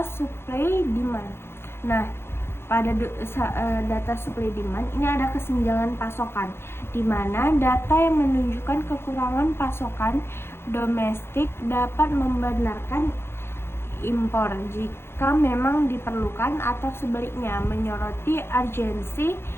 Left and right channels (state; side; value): late; right; 0.12 ms